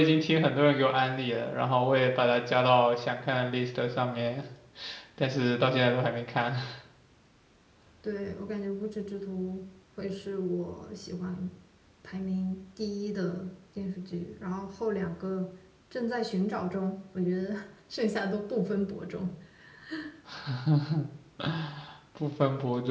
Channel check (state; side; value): identical; both; correlation 1.00